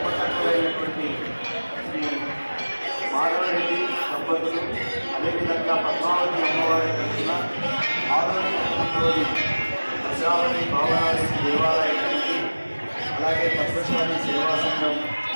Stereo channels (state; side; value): inverted; both; correlation -1.00